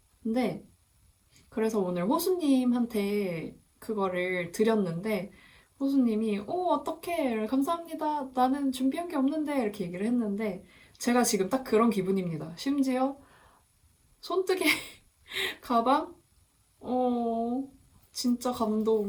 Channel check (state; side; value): identical; both; correlation 1.00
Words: 근데 그래서 오늘 호수님한테 그거를 드렸는데 호수님이 어떡해 감사합니다 나는 준비한 게 없는데 이렇게 얘기를 했는데 제가 지금 딱 그런 기분입니다. 심지어 손뜨개 가방? 진짜